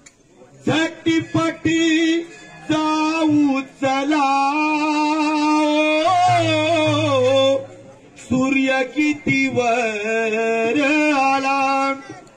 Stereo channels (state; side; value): identical; both; correlation 1.00